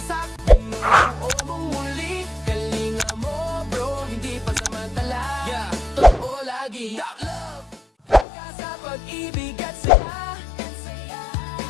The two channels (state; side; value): drops out; right; at 8.2 s